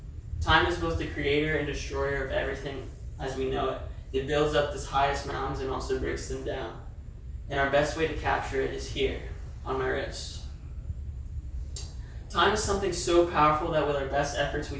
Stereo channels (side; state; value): both; identical; correlation 1.00